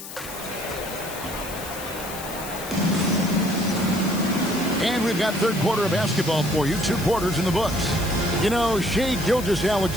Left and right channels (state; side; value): noise; left; hiss, 12 dB below the sound